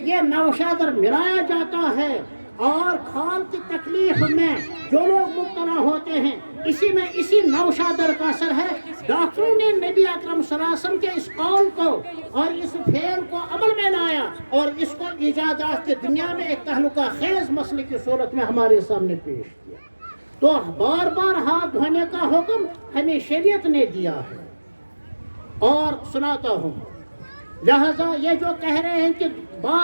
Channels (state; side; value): inverted; both; correlation -1.00